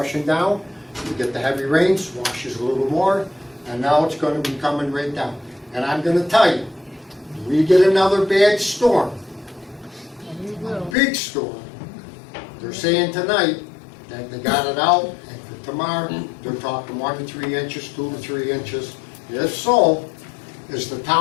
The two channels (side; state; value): right; drops out; at 11.0 s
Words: down. You get the heavy rains, washes a little more, and now it's gonna be coming right down. And I'm gonna tell you, we get another bad storm, a big storm. They're saying tonight that they got it out, and for tomorrow, they're talking 1 to 3 inches, 2 to 3 inches. If so, is the